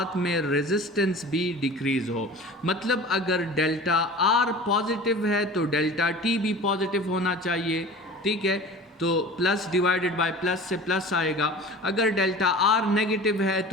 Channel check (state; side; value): normal; both; correlation 0.39